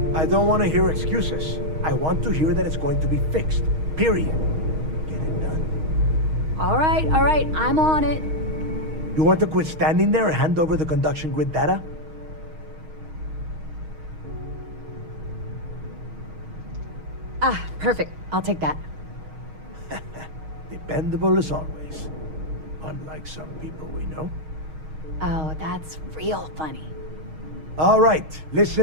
I don't want to hear excuses. I want to hear that it's going to be fixed. Period. Get it done. All right, I'm on it. You want to quit standing there and hand over the conduction grid data? Ah, perfect. I'll take that. Dependable as always. Unlike some people we know. Oh, that's real funny. All right,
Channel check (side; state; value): left; late; 6.4 ms